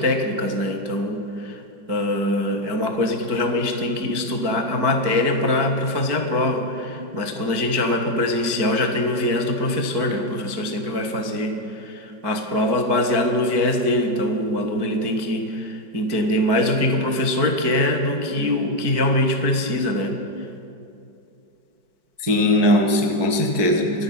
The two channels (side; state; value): left; late; 4.6 ms